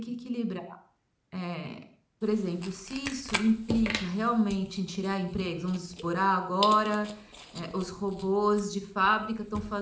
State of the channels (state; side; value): identical; both; correlation 1.00